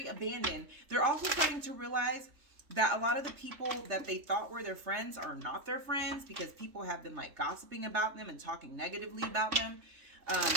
abandoned. They're also starting to realize that a lot of the people that they thought were their friends are not their friends because people have been gossiping about them and talking negatively about them.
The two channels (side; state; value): left; late; 3.3 ms